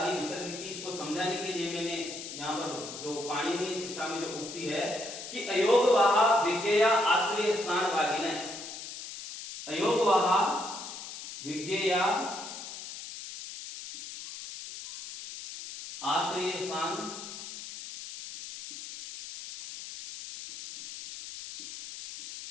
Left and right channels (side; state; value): left; noise; hiss, 10 dB below the sound